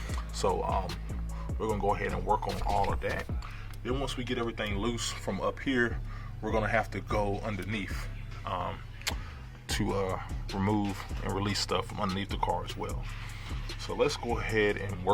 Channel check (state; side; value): identical; both; correlation 1.00